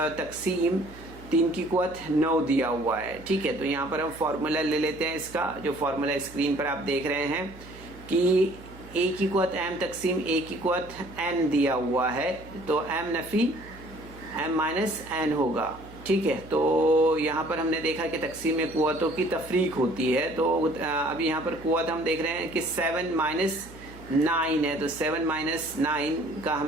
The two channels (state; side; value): noise; right; hum, 19 dB below the sound